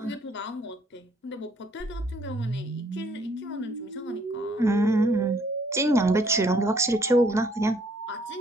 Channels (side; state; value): both; normal; correlation 0.64